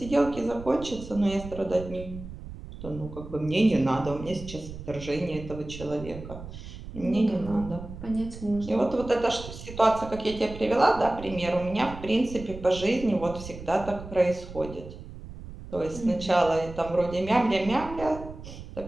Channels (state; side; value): noise; right; rumble, 13 dB below the sound